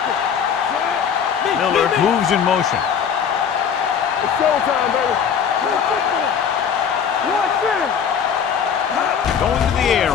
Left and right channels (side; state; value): right; quieter; 7.5 dB